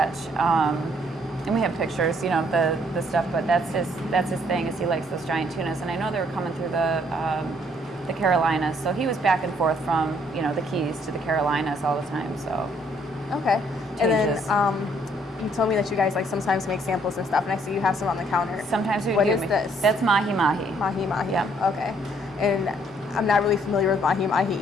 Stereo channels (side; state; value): both; normal; correlation 0.66